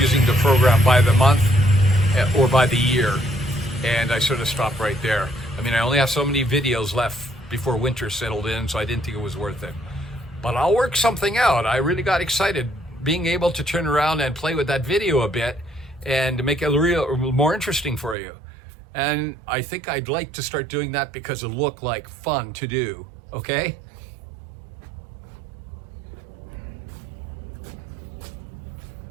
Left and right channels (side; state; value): left; drops out; at 18.2 s